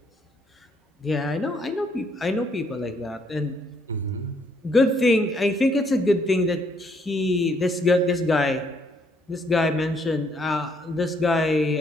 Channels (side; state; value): both; normal; correlation 0.70